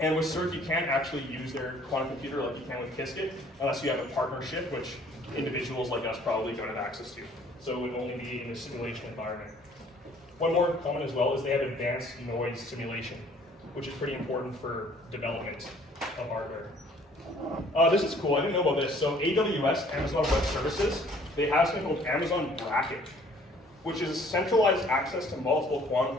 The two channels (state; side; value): normal; both; correlation 0.57